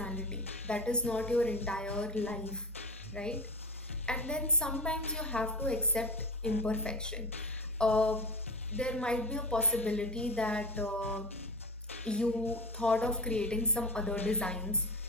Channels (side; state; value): both; normal; correlation 0.28